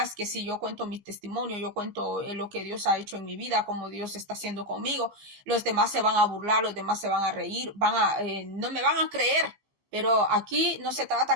que si yo cuento mi testimonio, yo cuento lo que Dios ha hecho en mi vida, como Dios está haciendo conmigo, los demás se van a burlar, los demás se van a reír, no me van a creer. Pero aquí no se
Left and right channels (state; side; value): late; left; 15 ms